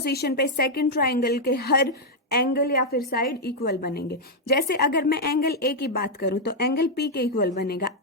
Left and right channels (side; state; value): both; normal; correlation -0.02